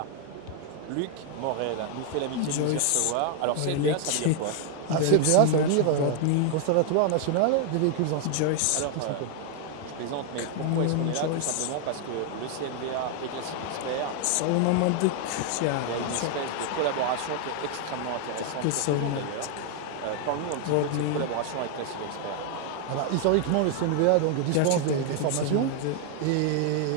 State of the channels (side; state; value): both; different; correlation 0.00